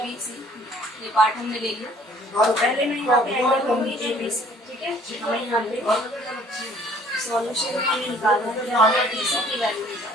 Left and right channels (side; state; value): both; normal; correlation 0.57